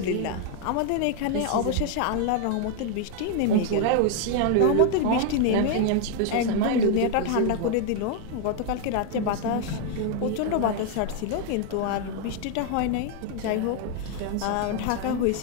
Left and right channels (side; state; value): both; different; correlation 0.00